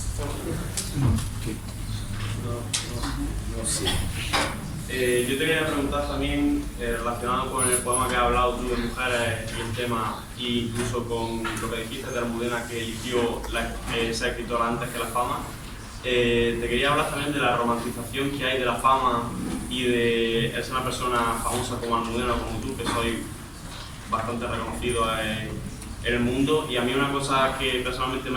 Yo te quería preguntar también, relacionado con el poema que has hablado tú de mujeres y el tema, e incluso con lo que dijiste de Almudena, que eligió ser escritora antes que la fama. Te quería hablar también de la romantización que hay de la fama y de ser una persona famosa como Almudena, como tú, que soy bastante reconocido en el mundo. Y a mí una cosa que personalmente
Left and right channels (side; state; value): both; identical; correlation 1.00